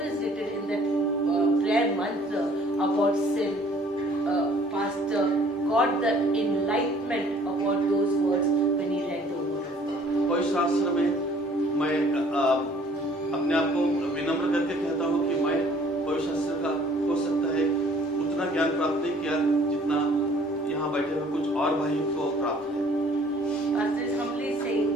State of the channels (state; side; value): normal; both; correlation 0.56